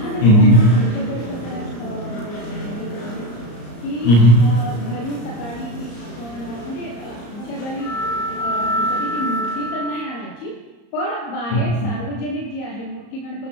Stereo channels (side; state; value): right; late; 34 ms